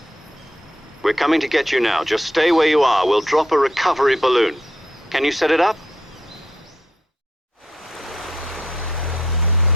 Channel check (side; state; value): both; normal; correlation 0.74